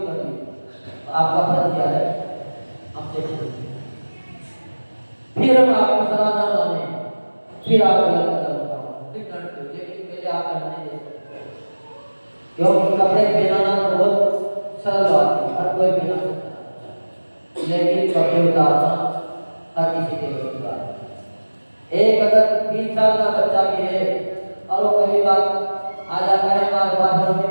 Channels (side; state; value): both; inverted; correlation -1.00